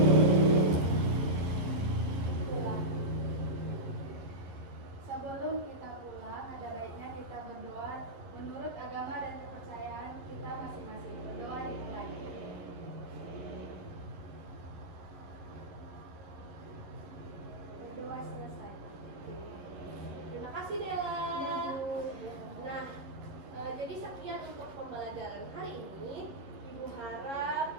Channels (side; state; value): left; late; 11 ms